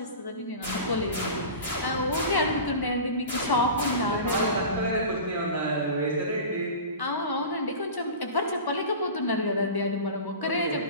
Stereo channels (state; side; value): inverted; both; correlation -0.33